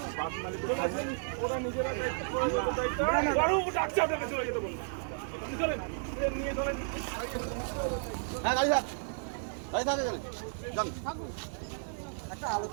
বাস মালিকের কাছে ওরা নিজেরা দায়িত্ব ডাকছে আপনাকে চলে যেতে বলুন। আপনি চলেন, নিয়ে চলেন। হ্যাঁ গাড়ি থাক, গাড়ি থাকে গেলে যান।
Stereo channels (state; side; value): silent; left; digital silence